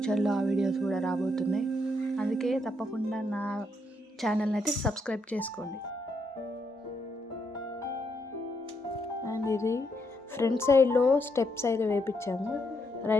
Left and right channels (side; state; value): both; normal; correlation 0.77